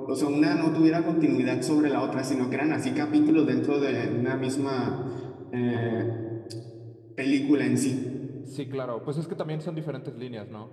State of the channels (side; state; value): both; identical; correlation 1.00